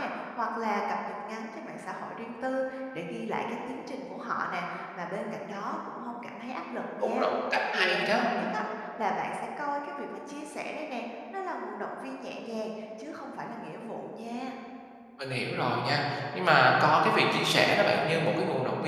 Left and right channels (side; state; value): both; identical; correlation 1.00